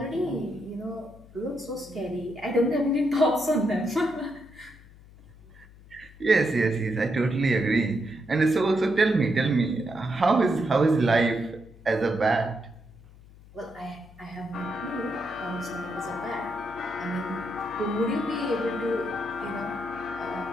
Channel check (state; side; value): noise; left; hum, 22 dB below the sound